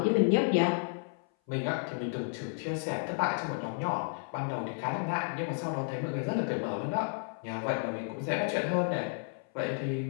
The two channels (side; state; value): right; silent; 56 dB below the other